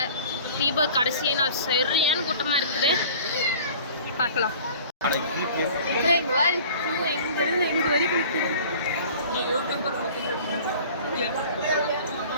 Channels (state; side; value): inverted; both; correlation -0.46